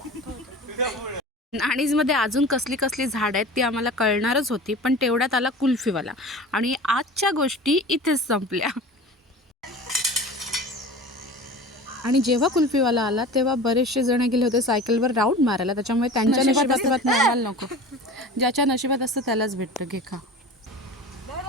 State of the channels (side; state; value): both; normal; correlation 0.36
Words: नाणीज मध्ये अजून कसली कसली झाड आहेत ती आम्हाला कळणारच होती, पण तेवढ्यात आला कुल्फीवाला आणि आजच्या गोष्टी इथेच संपल्या. आणि जेव्हा कुल्फीवाला आला तेव्हा बरेचसे जण गेले होते सायकलवर राऊंड मारायला, त्याच्यामुळे त्यांच्या नशिबात मिळायला नको. ज्याच्या नशिबात असतं त्यालाच भेटतं. घे खा.